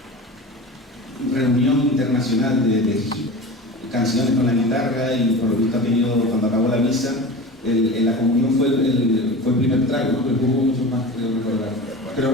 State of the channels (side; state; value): both; normal; correlation 0.32